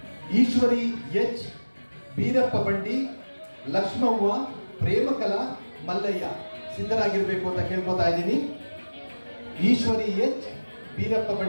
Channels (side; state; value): both; inverted; correlation -1.00